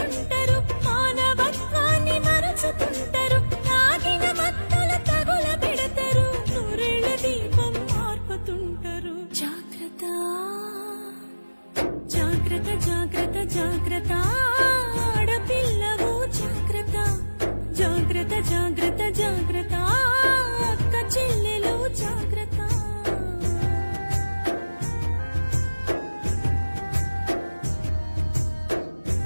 మానవత్వాన్ని మరచుతుంటారు తాగిన మత్తుల తగుల పెడతారు నూరేళ్ల దీపం మార్పుతుంటారు జాగ్రత్త జాగ్రత్త జాగ్రత్త జాగ్రత్త ఆడపిల్లవు జాగ్రత్త జాగ్రత్త జాగ్రత్త జాగ్రత్త అక్క చెల్లెలు జాగ్రత్త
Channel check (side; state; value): both; inverted; correlation -1.00